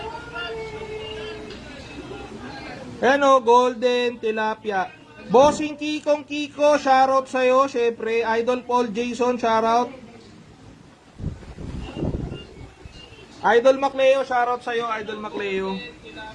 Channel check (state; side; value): identical; both; correlation 1.00